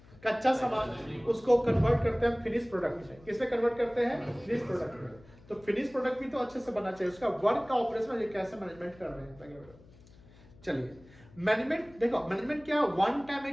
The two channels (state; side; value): noise; left; hum, 24 dB below the sound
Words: कच्चा सामान, उसको कन्वर्ट करते हैं फिनिश प्रोडक्ट में। किसमें कन्वर्ट करते हैं? फिनिश प्रोडक्ट में। तो फिनिश प्रोडक्ट भी तो अच्छे से बनना चाहिए, उसका वर्क का ऑपरेशन ये कैसे मैनेजमेंट कर रहे हैं। चलिए, मैनेजमेंट देखो, मैनेजमेंट क्या वन टाइम है